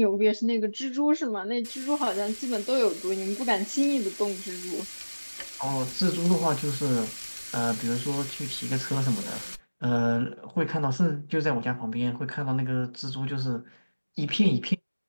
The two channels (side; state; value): both; inverted; correlation -1.00